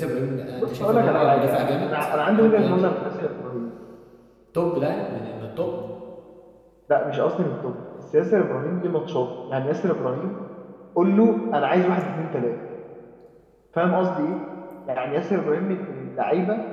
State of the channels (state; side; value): identical; both; correlation 1.00